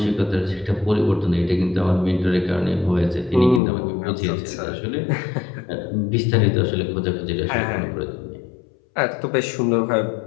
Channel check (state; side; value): drops out; right; at 3.6 s